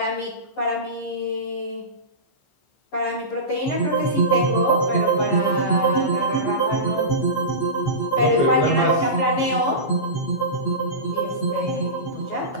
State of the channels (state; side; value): late; right; 15 ms